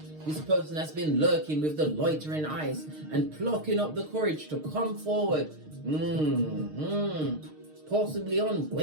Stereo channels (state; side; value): late; left; 6.5 ms